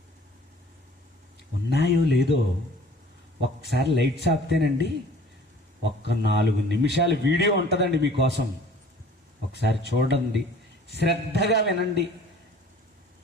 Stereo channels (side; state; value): both; normal; correlation 0.50